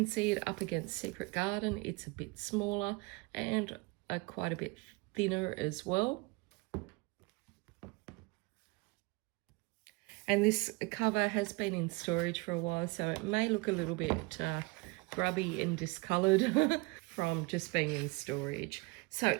see it up against Secret Garden. It's a bit smaller and quite a bit thinner as well. And this cover has been in storage for a while, so it may look a little bit grubby and discoloured from just being in storage. So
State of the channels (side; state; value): left; quieter; 25.5 dB